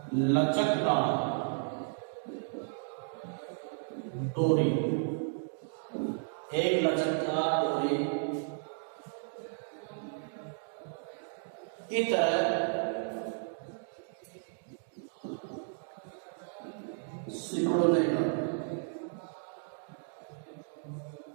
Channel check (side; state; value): left; silent; digital silence